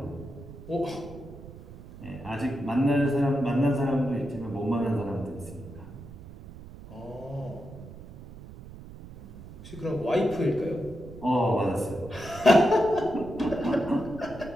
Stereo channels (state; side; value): noise; right; rumble, 16 dB below the sound